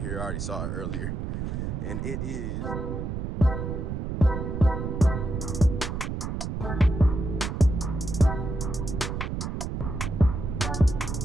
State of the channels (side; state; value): right; noise; rumble, 3 dB below the sound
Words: I already saw it earlier, and it is